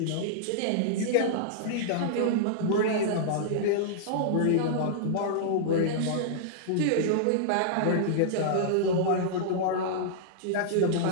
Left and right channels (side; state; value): both; different; correlation -0.02